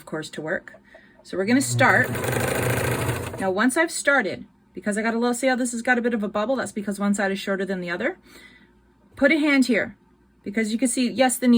course, to work. So we're going to start. Now, once I've started, because I got a little, see how this has got a bit of a bubble? That's because one side is shorter than the other. Put a hand here, because you can see, yes, the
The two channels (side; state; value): both; identical; correlation 1.00